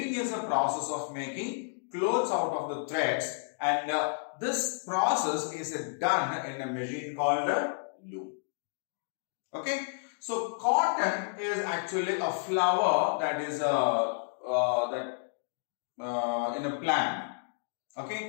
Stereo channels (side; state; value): right; silent; digital silence